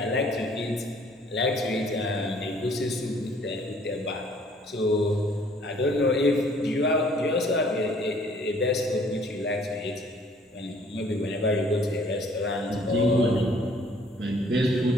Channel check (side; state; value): both; normal; correlation 0.58